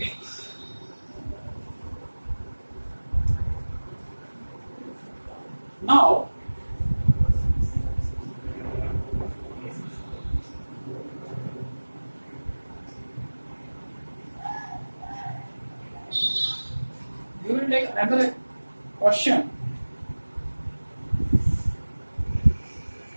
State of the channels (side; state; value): both; inverted; correlation -1.00